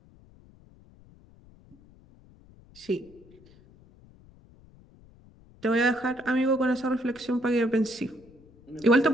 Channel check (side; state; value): left; noise; rumble, 26 dB below the sound